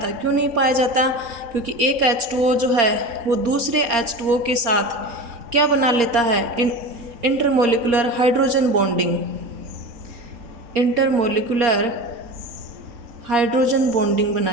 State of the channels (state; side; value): late; left; 4.3 ms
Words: क्यों नहीं पाया जाता, क्योंकि एक H2O जो है वो दूसरे H2O के साथ क्या बना लेता है, intermolecular hydrogen bonding, intermolecular hydrogen bonding बना